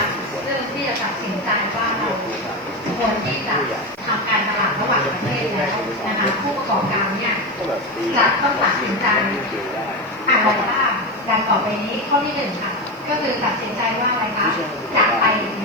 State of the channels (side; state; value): right; noise; hiss, 29 dB below the sound